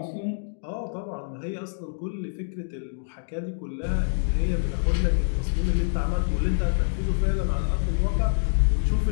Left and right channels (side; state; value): right; silent; digital silence